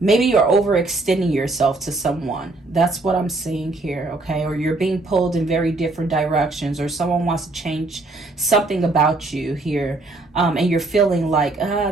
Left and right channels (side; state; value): left; quieter; 3.1 dB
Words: Maybe you're overextending yourself to someone. That's what I'm seeing here, okay? Or you're being pulled in very different directions, or someone wants to change something about you here. And you're feeling like,